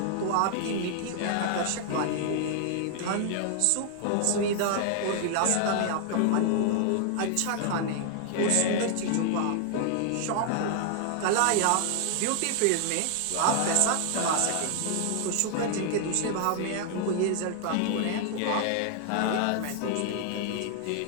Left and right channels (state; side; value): different; both; correlation 0.00